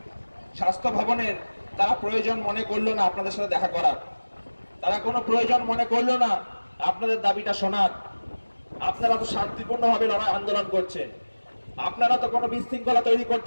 স্বাস্থ্য ভবনের তারা প্রয়োজন মনে করলো না আপনাদের সাথে দেখা করার, তারা কোনো প্রয়োজন মনে করলো না আপনাদের দাবিটা শোনার। আপনারা তো শান্তিপূর্ণভাবে লড়াই আন্দোলন করছেন, আপনারা তো কোনো বিশৃঙ্খলা তৈরি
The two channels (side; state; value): both; inverted; correlation -1.00